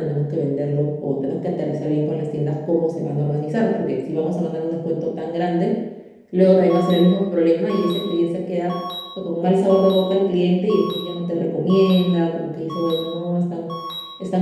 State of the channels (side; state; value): both; identical; correlation 1.00